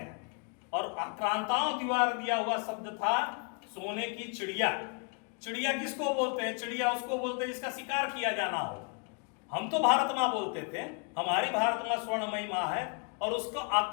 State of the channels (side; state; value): right; quieter; 35.9 dB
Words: और आक्रांताओं द्वारा दिया हुआ शब्द था सोने की चिड़िया। चिड़िया किसको बोलते हैं? चिड़िया उसको बोलते हैं जिसका शिकार किया जाना हो। हम तो भारत मां बोलते थे, हमारी भारत मां स्वर्णमयी मां है, और उसको